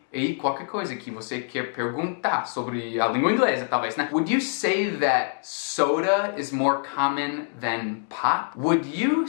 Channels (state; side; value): silent; right; digital silence